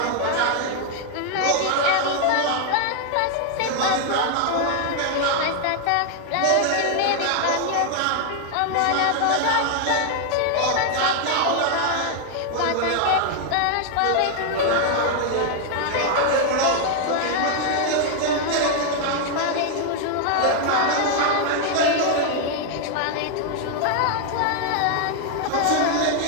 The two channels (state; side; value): different; both; correlation 0.00